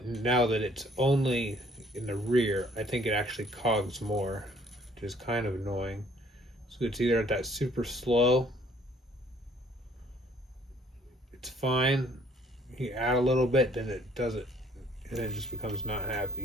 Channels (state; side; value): normal; both; correlation 0.57